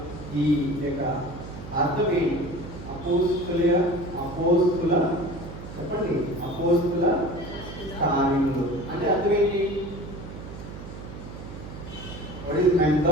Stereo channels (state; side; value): noise; right; hum, 12 dB below the sound